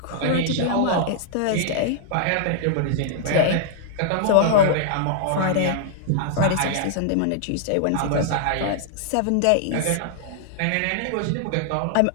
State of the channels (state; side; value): different; both; correlation -0.01